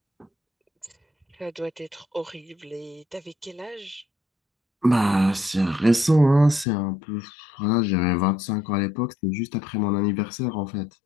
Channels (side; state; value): right; drops out; at 6.7 s